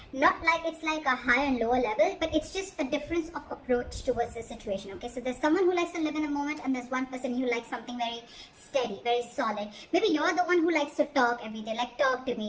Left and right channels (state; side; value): identical; both; correlation 1.00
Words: not like it's like a high and lower level, but it's just a difference of approach towards the situation, okay. So there's someone who likes to live in the moment, and there's one person who likes something very steady, very solid. Maybe you're the one who likes to talk every day, like, talk to